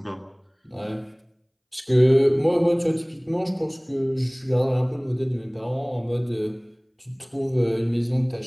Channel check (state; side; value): identical; both; correlation 1.00